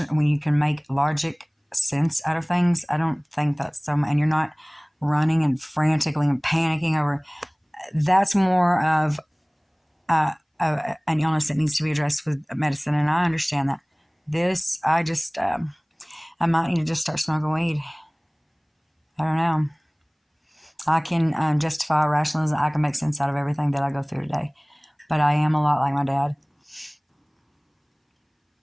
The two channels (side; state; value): both; identical; correlation 1.00